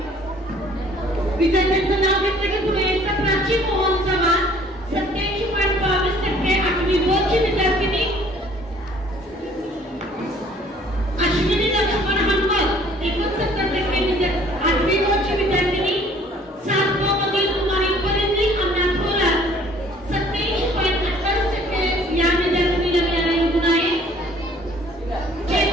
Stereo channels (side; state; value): both; normal; correlation 0.56